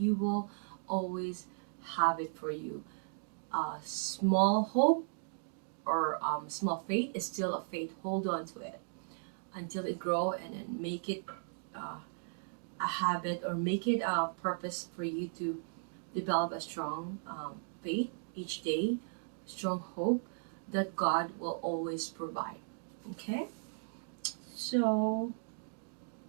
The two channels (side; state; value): left; silent; digital silence